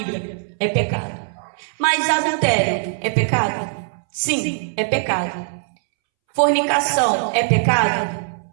É pecado. Mas adultério é pecado? Sim, é pecado. Fornicação é pecado?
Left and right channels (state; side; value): silent; left; 65 dB below the other